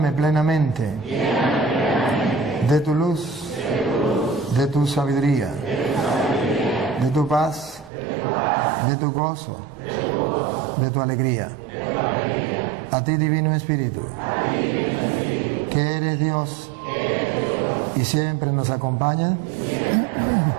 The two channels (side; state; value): left; drops out; at 7.9 s